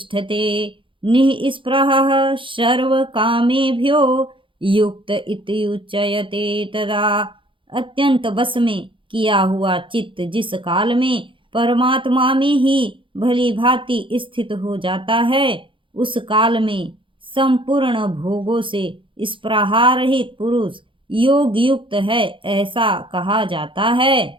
निःस्पृहः सर्वकामेभ्यो युक्त इति उच्यते। तदा अत्यंत वश में किया हुआ चित्त जिस काल में परमात्मा में ही भली भांति स्थित हो जाता है, उस काल में संपूर्ण भोगों से स्पृहारहित पुरुष योग युक्त है, ऐसा कहा जाता है।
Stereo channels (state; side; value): late; left; 0.25 ms